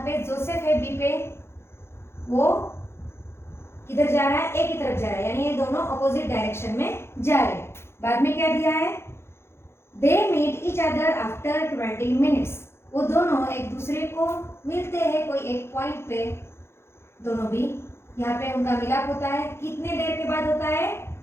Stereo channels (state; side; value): late; right; 0.12 ms